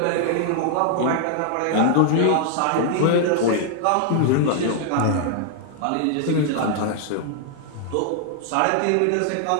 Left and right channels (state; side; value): different; both; correlation 0.00